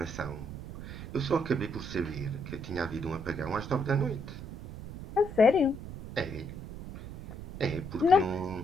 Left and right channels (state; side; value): noise; right; rumble, 11 dB below the sound